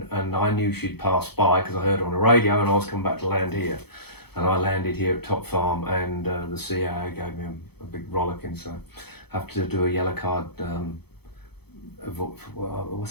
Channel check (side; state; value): right; late; 0.97 ms